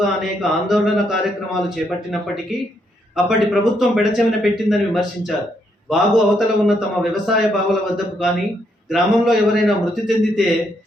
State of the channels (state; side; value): normal; both; correlation 0.75